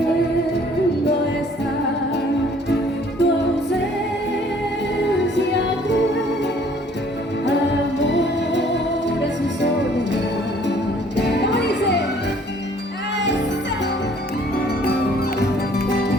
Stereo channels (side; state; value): both; normal; correlation 0.58